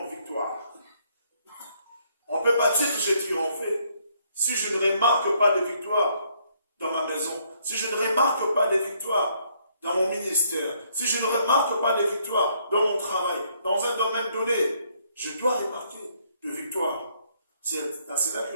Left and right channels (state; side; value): inverted; both; correlation -0.69